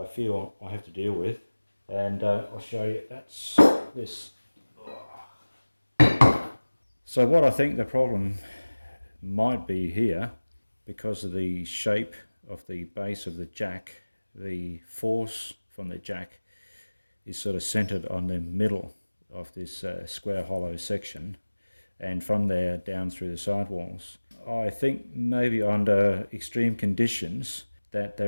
feel I have to deal with, and I'll show you. That's this. So what I think the problem might be here, because of the shape of the base of the jack, the force from the jack is sort of centered on the middle of this square hollow section, and from there down through the sidewalls. I think maybe under extreme conditions that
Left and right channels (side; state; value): both; inverted; correlation -1.00